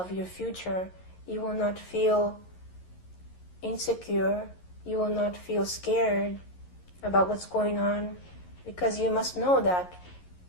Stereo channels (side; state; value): right; late; 11 ms